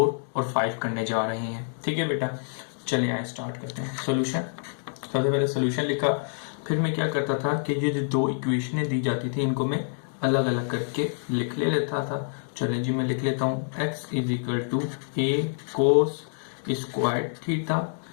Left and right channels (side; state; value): right; silent; digital silence